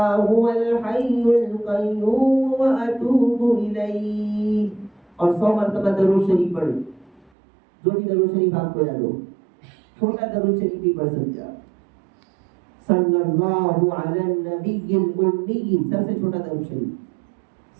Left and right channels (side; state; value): left; drops out; at 7.3 s